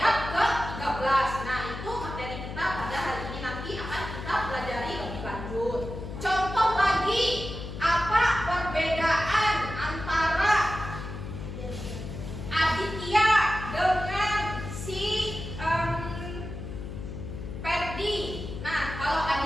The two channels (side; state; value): left; noise; hum, 8 dB below the sound